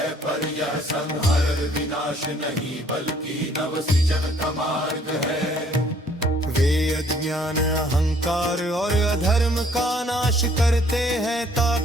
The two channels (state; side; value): normal; both; correlation 0.61